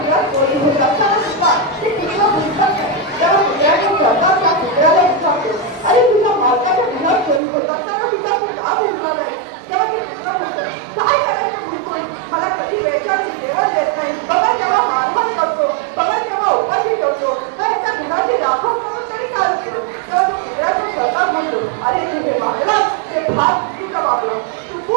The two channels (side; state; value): left; drops out; at 7.4 s